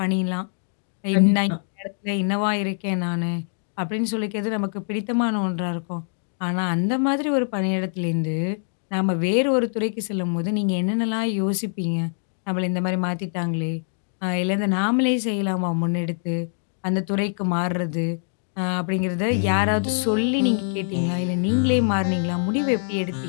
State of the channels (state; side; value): silent; right; digital silence